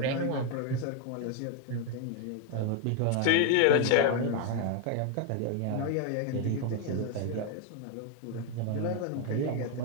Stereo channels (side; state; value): both; different; correlation 0.01